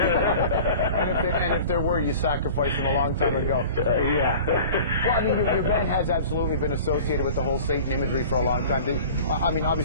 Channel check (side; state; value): both; inverted; correlation -0.41